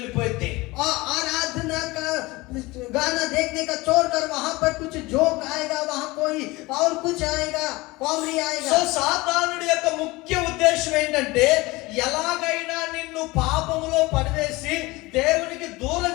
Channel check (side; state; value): right; quieter; 21.8 dB